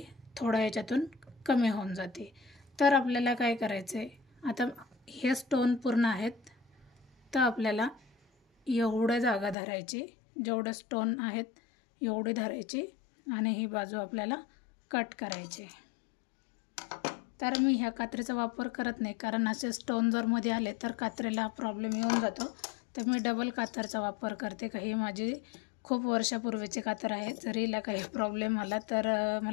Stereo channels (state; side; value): drops out; right; at 9.6 s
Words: थोडं याच्यातून कमी होऊन जाते. तर आपल्याला काय करायचं आहे, आता हे स्टोन पूर्ण आहेत तर आपल्याला एवढं जागा धरायची, जेवढं स्टोन आहेत एवढी धरायची आणि ही बाजू आपल्याला कट करायची. तर मी ह्या कात्रीचा वापर करत नाही कारण असे स्टोन जर मध्ये आले तर कात्रीला प्रॉब्लेम येऊन जातो. तर मी डबल कातरचा वापर करते. काही माझी खूप वर्षापूर्वीची कातर आहे. जरी हिला काही प्रॉब्लेम आला तर